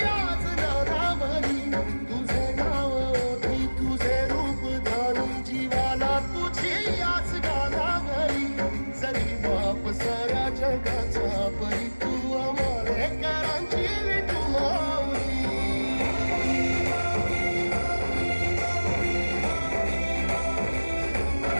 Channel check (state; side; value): inverted; both; correlation -1.00